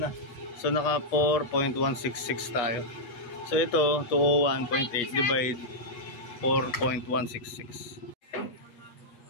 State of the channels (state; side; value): late; right; 8.3 ms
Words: So naka 4.166 tayo. So ito 201.8 divide 4.166.